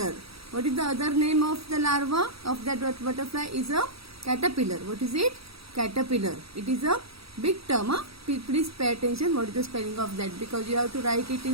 What is the other name of the larva of that butterfly? Is a caterpillar. What is it? Caterpillar. It is a big term. Please pay attention what is the spelling of that, because you have to write it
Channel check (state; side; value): late; left; 0.77 ms